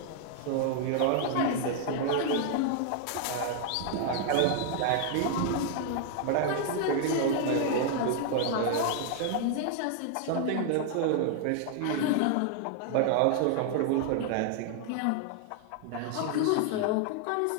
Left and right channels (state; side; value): different; both; correlation 0.00